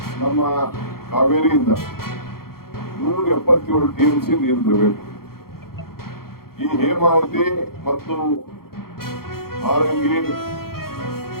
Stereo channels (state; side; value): late; right; 0.94 ms